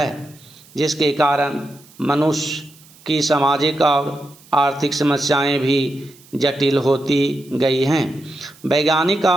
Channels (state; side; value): noise; right; hiss, 25 dB below the sound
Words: जिसके कारण मनुष्य की सामाजिक और आर्थिक समस्याएं भी जटिल होती गई हैं। वैज्ञानिक